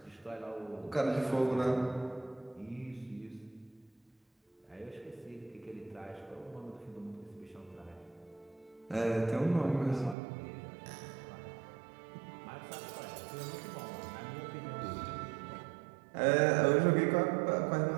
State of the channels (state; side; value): drops out; left; at 10.2 s